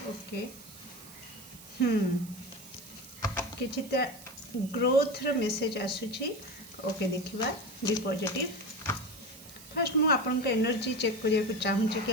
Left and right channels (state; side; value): noise; right; hiss, 17 dB below the sound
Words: ओके। किसी ग्रोथ रो मेसेज आसूची ओके देखिबा बी पॉजिटिव। फर्स्ट मु आपन का एनर्जी चेक करिया को चाहूची कि